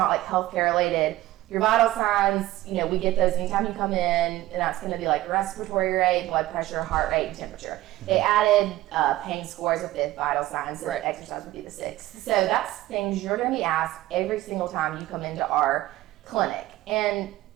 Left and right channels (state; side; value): quieter; left; 16.2 dB